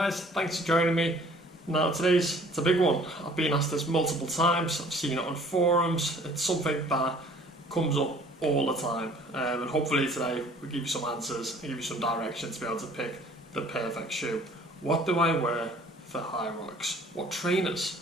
thanks for joining me. Now it's a big one. I've been asked this multiple times, I've seen it on forums, it's something that comes up all the time. And hopefully today we'll give you some answers and give you some direction to be able to pick the perfect shoe. What do I wear for Hyrox? What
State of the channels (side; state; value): both; normal; correlation 0.53